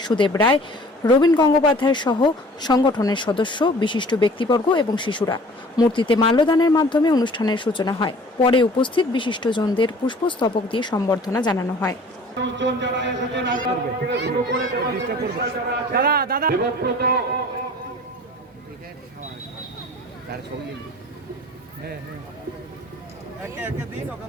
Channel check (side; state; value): both; normal; correlation 0.48